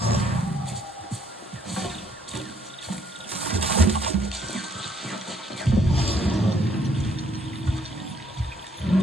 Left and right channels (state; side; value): normal; both; correlation 0.67